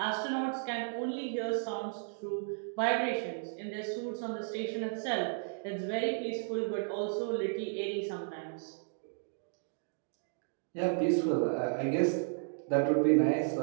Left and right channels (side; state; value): left; silent; digital silence